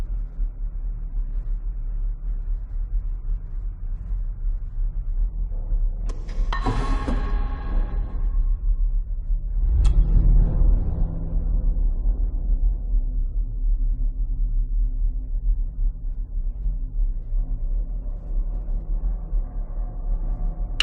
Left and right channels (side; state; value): both; identical; correlation 1.00